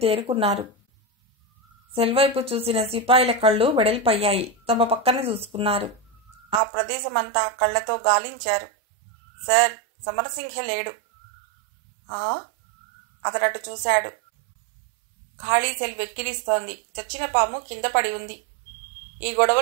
తేరుకున్నారు. సెల్వైపు చూసిన సిపాయిల కళ్ళు వెడల్పయ్యాయి. తమ పక్కన చూసుకున్నారు. ఆ ప్రదేశమంతా కళ్లతో గాలించారు. సార్, సమరసింహ లేడు. అతడటు చూశాడు. ఖాళీ సెల్ వెక్కిరిస్తోంది. చచ్చిన పాము కింద పడి ఉంది. ఈ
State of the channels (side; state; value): left; drops out; at 6.6 s